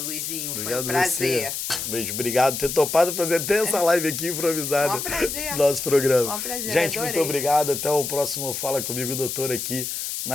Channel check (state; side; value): noise; left; hiss, 4 dB below the sound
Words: Obrigado, foi um prazer. Você. Beijo, obrigado por ter topado fazer até essa live aqui improvisada Um prazer. no nosso programa. Um prazer, gente, adorei. muito obrigado. Até o próximo Fala Comigo, Doutor, aqui